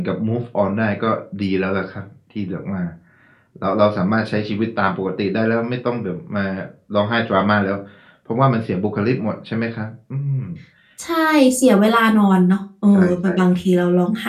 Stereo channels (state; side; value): identical; both; correlation 1.00